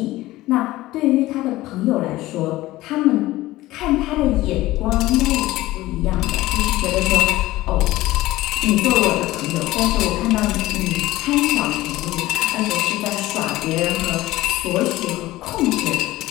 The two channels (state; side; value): quieter; right; 17.3 dB